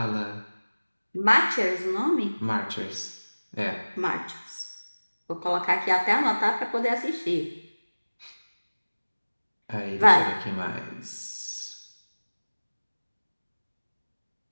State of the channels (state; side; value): inverted; both; correlation -1.00